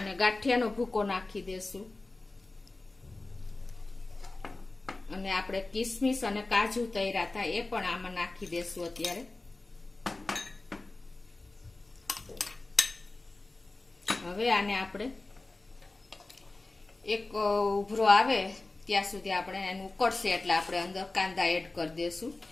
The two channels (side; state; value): right; quieter; 3.2 dB